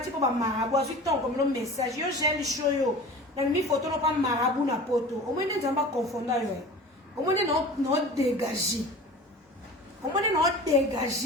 po ba marabu azu ton comme le message yo gel show yo. Na mi photo no pa marabu na poto. O mo ne nzamba confondre yo. O mo ne no dégager. O mo ne no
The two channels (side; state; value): both; normal; correlation 0.38